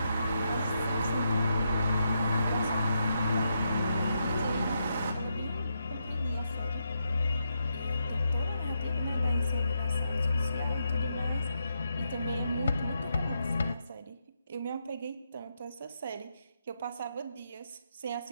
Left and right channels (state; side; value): inverted; both; correlation -0.82